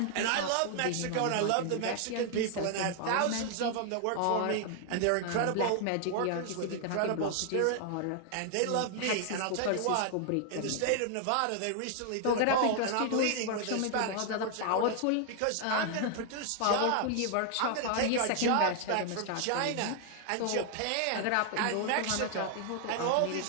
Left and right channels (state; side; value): different; both; correlation 0.00